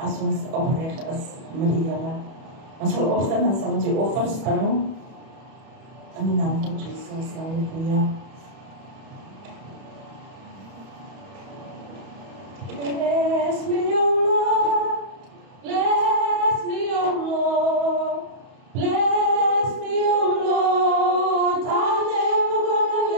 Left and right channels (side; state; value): left; late; 31 ms